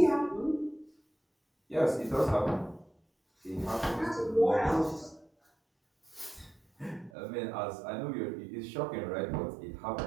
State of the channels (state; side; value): drops out; left; at 7.1 s